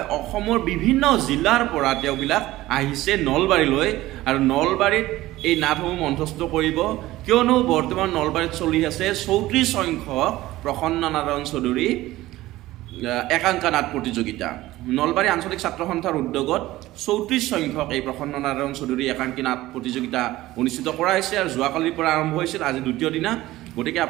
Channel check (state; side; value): quieter; left; 16.8 dB